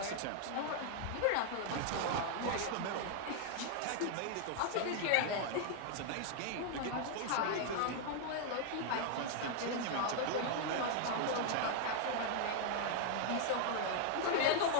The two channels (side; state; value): both; different; correlation 0.00